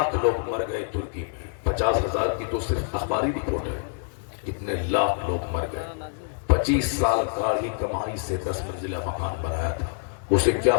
لوگ مر گئے ترکی میں، 50,000 کی تو صرف اخباری رپورٹ ہے، کتنے لاکھ لوگ مر گئے۔ 25 سال کا ہی کمائی سے 10 منزلہ مکان بنایا تھا، اسے کیا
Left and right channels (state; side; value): silent; right; digital silence